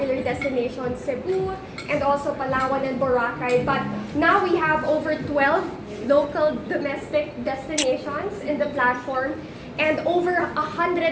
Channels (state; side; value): identical; both; correlation 1.00